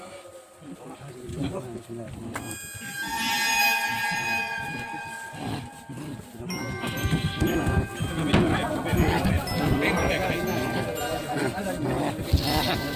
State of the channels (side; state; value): both; identical; correlation 1.00